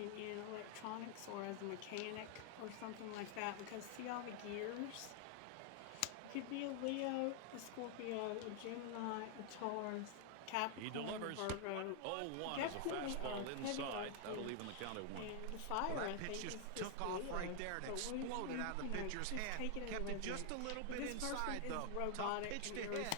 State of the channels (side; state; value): both; different; correlation 0.00